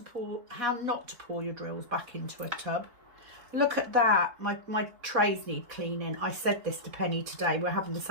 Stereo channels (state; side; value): late; left; 4.2 ms